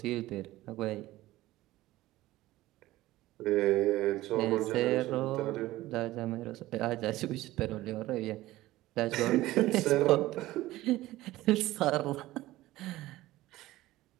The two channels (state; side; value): quieter; left; 16.9 dB